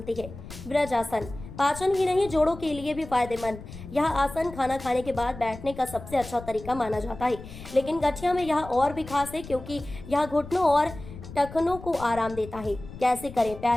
है। ब्रजासन, पाचन ही नहीं जोड़ों के लिए भी फायदेमंद। यह आसन खाना खाने के बाद बैठने का सबसे अच्छा तरीका माना जाता है, लेकिन गठिया में यह और भी खास है क्योंकि यह घुटनों और टखनों को आराम देता है। कैसे करें?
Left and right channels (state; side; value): noise; left; rumble, 14 dB below the sound